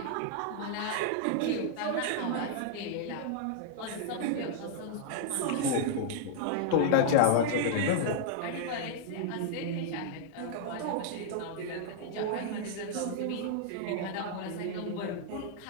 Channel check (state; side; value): different; both; correlation -0.01